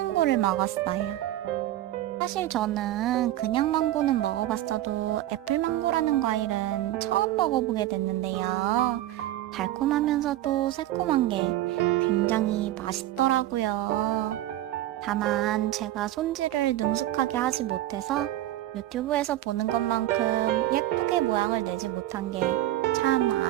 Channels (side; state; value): left; quieter; 14.4 dB